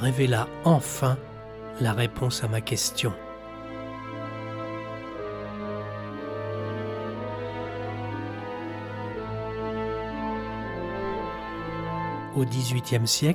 enfin la réponse à ma question. Au XVIIIe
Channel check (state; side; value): identical; both; correlation 1.00